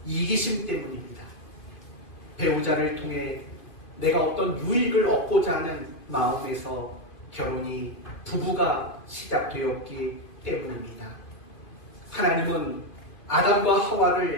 이기심 때문입니다. 배우자를 통해 내가 어떤 유익을 얻고자 하는 마음에서 결혼이 부부가 시작되었기 때문입니다. 하나님은 아담과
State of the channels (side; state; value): right; late; 2.2 ms